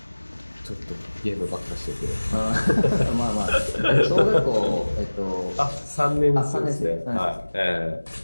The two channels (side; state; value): both; inverted; correlation -1.00